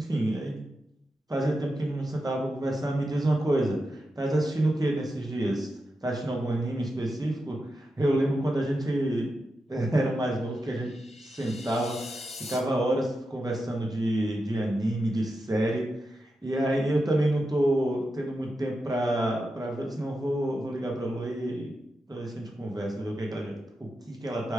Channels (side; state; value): both; normal; correlation 0.88